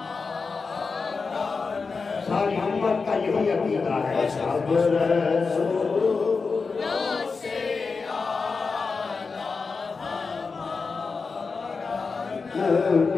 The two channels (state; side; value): quieter; right; 4.6 dB